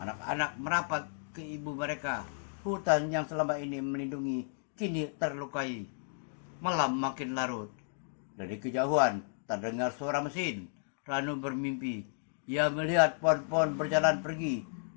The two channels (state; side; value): silent; right; digital silence